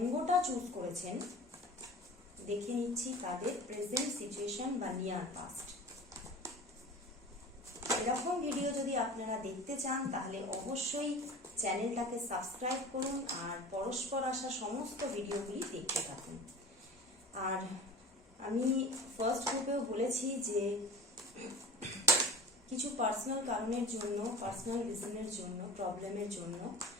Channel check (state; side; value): normal; both; correlation 0.39